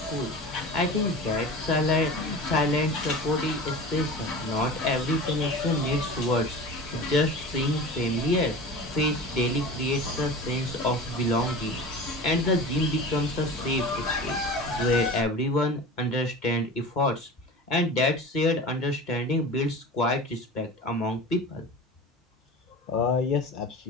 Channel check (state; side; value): normal; both; correlation 0.34